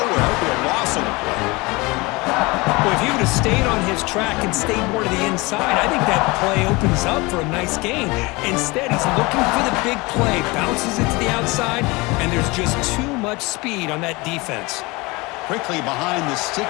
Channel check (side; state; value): right; quieter; 24.3 dB